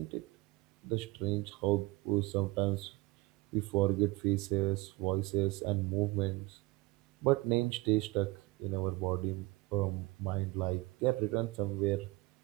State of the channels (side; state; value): left; quieter; 22.7 dB